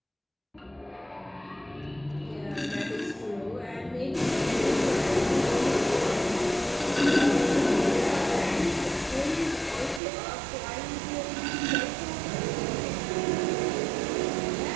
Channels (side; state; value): left; drops out; at 10.0 s